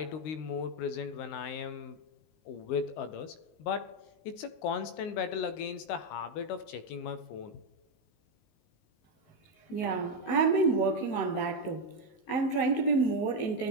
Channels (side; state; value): right; late; 19 ms